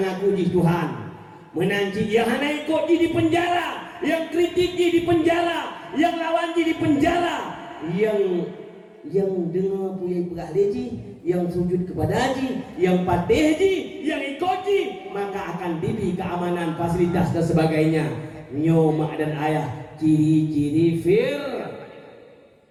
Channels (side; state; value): both; identical; correlation 1.00